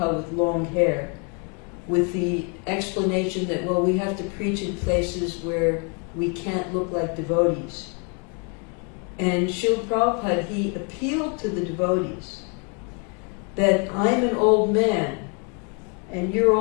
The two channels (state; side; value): quieter; right; 35.9 dB